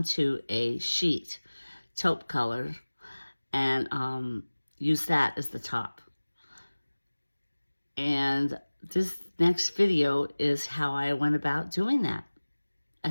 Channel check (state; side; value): inverted; both; correlation -1.00